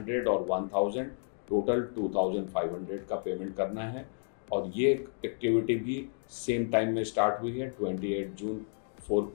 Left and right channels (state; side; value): silent; right; digital silence